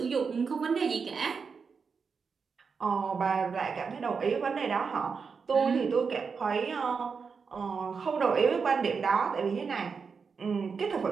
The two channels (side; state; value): left; quieter; 5.5 dB